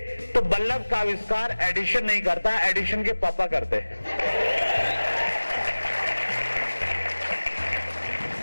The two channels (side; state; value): both; inverted; correlation -1.00